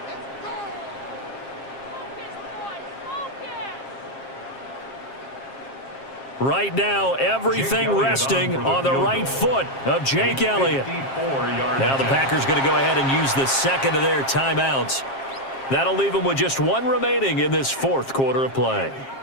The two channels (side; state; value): right; late; 7.4 ms